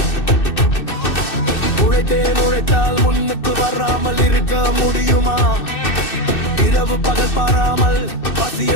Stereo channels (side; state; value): right; late; 2.6 ms